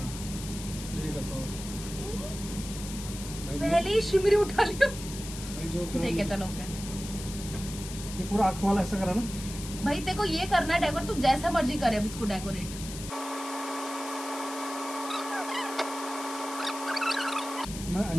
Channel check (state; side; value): noise; left; hiss, 11 dB below the sound